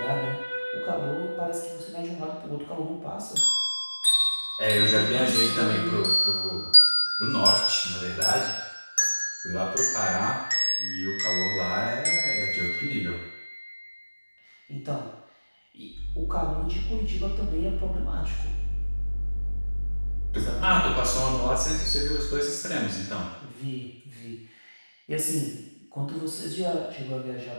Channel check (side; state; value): both; inverted; correlation -1.00